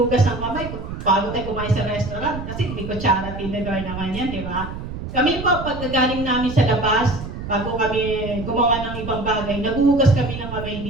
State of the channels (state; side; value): noise; right; rumble, 8 dB below the sound